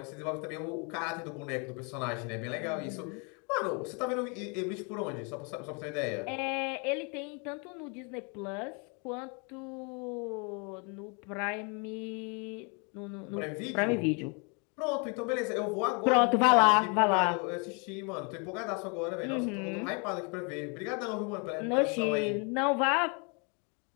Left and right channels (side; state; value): right; quieter; 34.4 dB